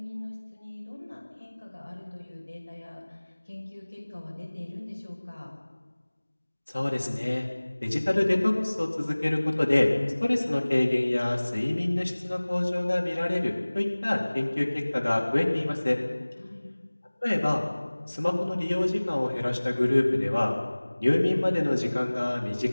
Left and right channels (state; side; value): inverted; both; correlation -1.00